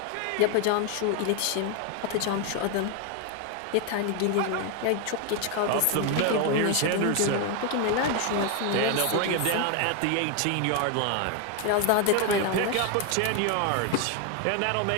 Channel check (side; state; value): both; different; correlation 0.01